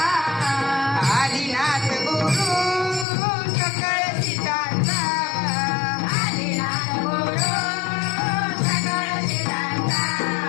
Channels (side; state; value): right; drops out; at 3.1 s